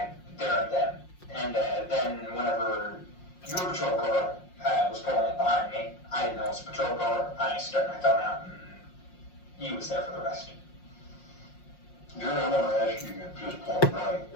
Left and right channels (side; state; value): right; late; 5.6 ms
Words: there and then. And then whenever your patrol car was pulling in behind me, I didn't know it was a patrol car. I stuck my thumb out and he was there for the rest. Jerry, I want to ask you at this point blank,